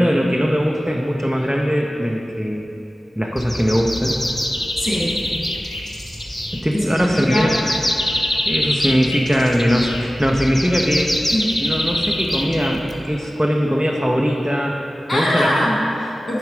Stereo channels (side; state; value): both; normal; correlation 0.95